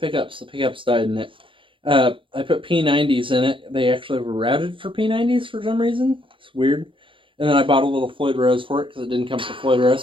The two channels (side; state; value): left; late; 0.25 ms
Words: The pickups died in it. I put P90s in it. They actually were routed for P90s for some reason. It's weird. And then I bought a little Floyd Rose for it because it didn't come with the Floyd